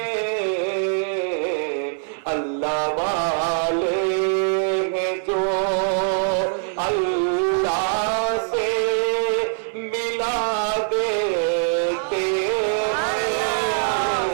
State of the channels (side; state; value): left; silent; 64 dB below the other